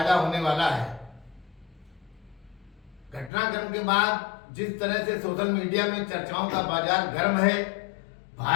होने वाला है। घटनाक्रम के बाद जिस तरह से सोशल मीडिया में चर्चाओं का बाजार गर्म है,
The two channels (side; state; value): right; drops out; at 3.3 s